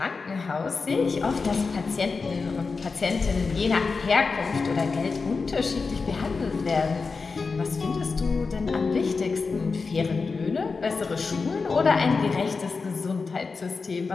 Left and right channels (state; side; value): quieter; right; 4.5 dB